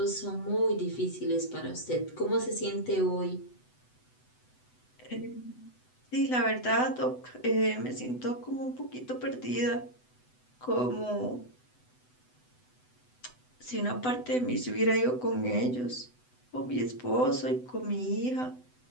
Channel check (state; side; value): late; right; 8.0 ms